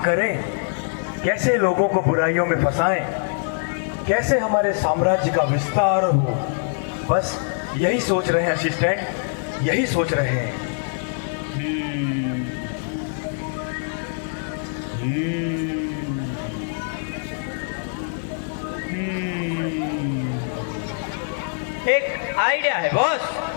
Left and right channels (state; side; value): silent; right; 63 dB below the other